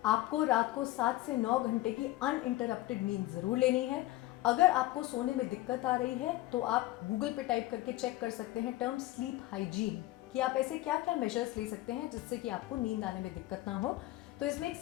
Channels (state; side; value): quieter; right; 17.2 dB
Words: आपको रात को 7 से 9 घंटे की अनइंटरप्टेड नींद ज़रूर लेनी है। अगर आपको सोने में दिक्कत आ रही है तो आप गूगल पे टाइप करके चेक कर सकते हैं टर्म स्लीप हाइजीन, कि आप ऐसे क्या क्या मेजर्स ले सकते हैं जिससे कि आपको नींद आने में दिक्कत ना हो। तो इसमें एक